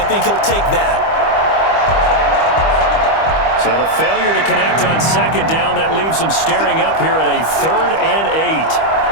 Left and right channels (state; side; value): late; right; 25 ms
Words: think he'll take that. So the failure to connect on 2nd down, that leaves him staring up here at a 3rd and 8.